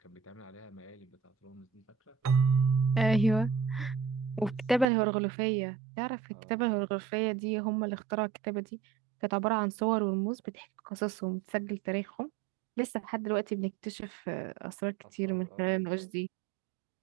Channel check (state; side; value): drops out; left; at 4.9 s